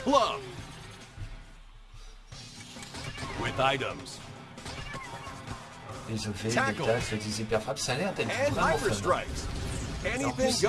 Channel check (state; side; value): identical; both; correlation 1.00